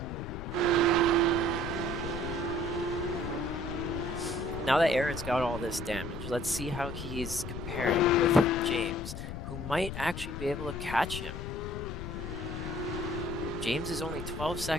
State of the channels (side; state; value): left; noise; rumble, 7 dB below the sound